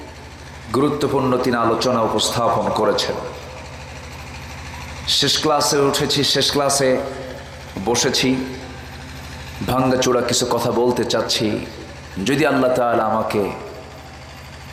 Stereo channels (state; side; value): identical; both; correlation 1.00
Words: গুরুত্বপূর্ণ তিনি আলোচনা উপস্থাপন করেছেন। শেষ ক্লাসে উঠেছি, শেষ ক্লাসে বসেছি, ভাঙ্গাচোরা কিছু কথা বলতে চাচ্ছি, যদি আল্লাহ তাআলা আমাকে